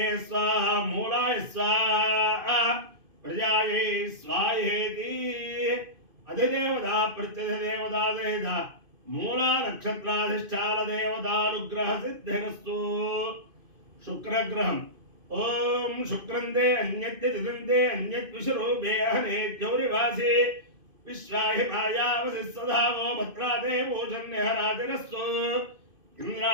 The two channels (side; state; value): left; late; 2.5 ms